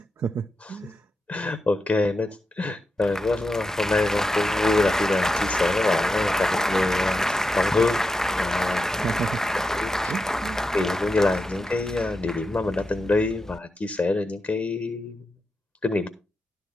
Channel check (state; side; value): normal; both; correlation 0.88